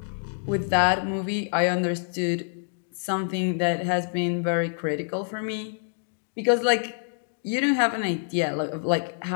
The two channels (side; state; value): right; silent; digital silence